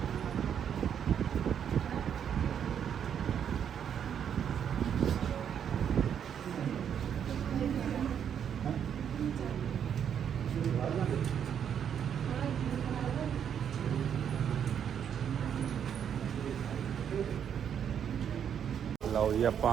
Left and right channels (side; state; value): left; quieter; 8.5 dB